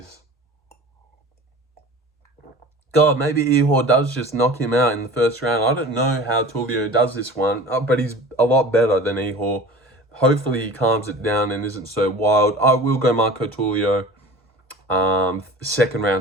God, maybe Ihor does just knock him out in the first round. I don't know how Tulio does this one, but he's a lot better than Ihor. Hopefully he calms it down and isn't so wild. I will go Marco Tulio. Second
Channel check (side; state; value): both; normal; correlation 0.39